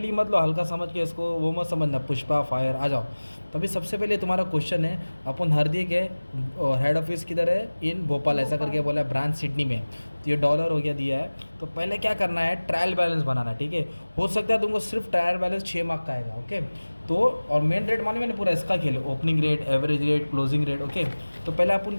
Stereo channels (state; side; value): inverted; both; correlation -1.00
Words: मत लो, हल्का समझ के इसको वो मत समझना, पुष्पा फायर आ जाओ। तो अभी सबसे पहले तुम्हारा क्वेश्चन है, अपन हरदी के हेड ऑफिस किधर है, इन भोपाल ऐसा करके बोला है, ब्रांच सिडनी में। तो ये डॉलर हो गया दिया है। तो पहले क्या करना है, ट्रायल बैलेंस बनाना है। ठीक है, हो सकता है तुमको सिर्फ ट्रायल बैलेंस 6 मार्क का आएगा। ओके, तो और मेन रेट माने मैंने पूरा इसका खेले, opening rate, average rate, closing rate. Okay, तो पहले अपन